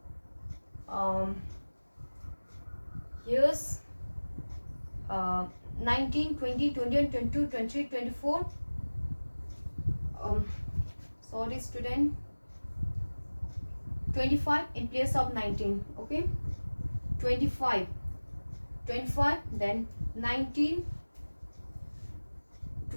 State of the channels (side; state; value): both; inverted; correlation -1.00